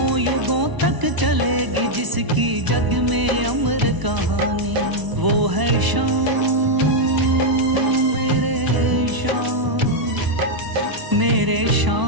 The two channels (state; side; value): late; left; 1.0 ms